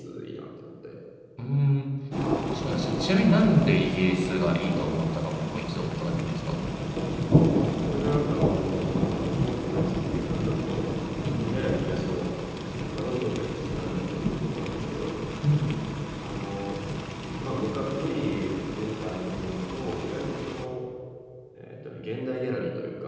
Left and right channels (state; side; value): identical; both; correlation 1.00